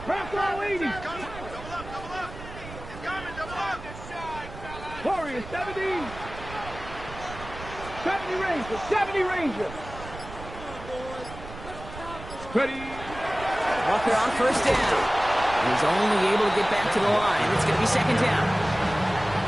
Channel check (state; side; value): noise; right; rumble, 13 dB below the sound